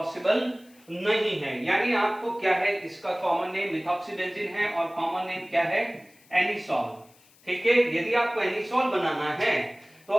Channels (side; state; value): left; noise; hiss, 29 dB below the sound